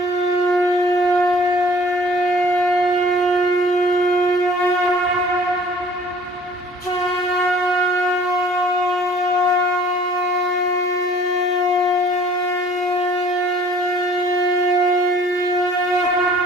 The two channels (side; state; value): both; normal; correlation 0.52